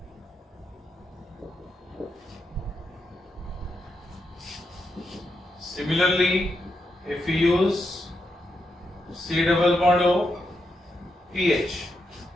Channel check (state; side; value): normal; both; correlation 0.84